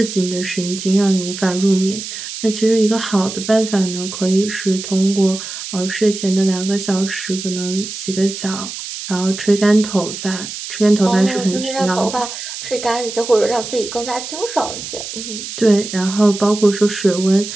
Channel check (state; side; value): noise; right; hiss, 9 dB below the sound